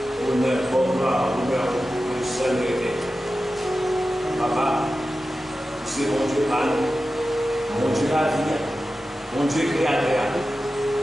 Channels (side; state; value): both; normal; correlation 0.93